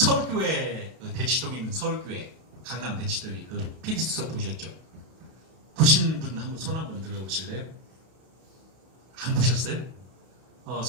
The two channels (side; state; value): left; late; 31 ms